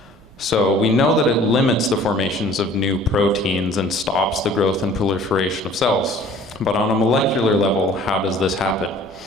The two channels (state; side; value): normal; both; correlation 0.50